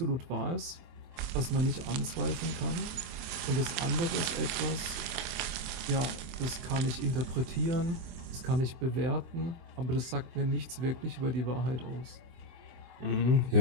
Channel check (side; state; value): left; late; 24 ms